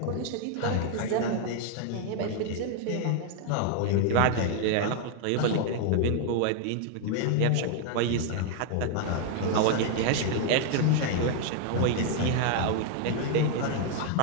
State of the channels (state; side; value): different; both; correlation 0.00